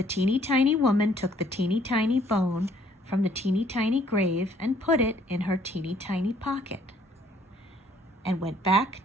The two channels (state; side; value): normal; both; correlation 0.62